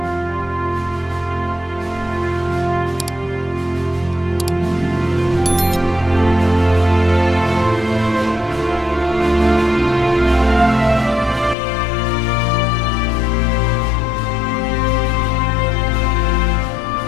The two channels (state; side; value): drops out; right; at 11.6 s